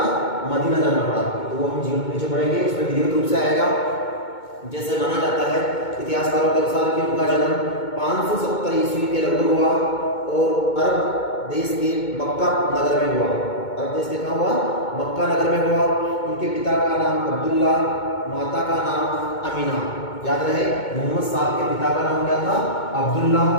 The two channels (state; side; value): late; right; 2.2 ms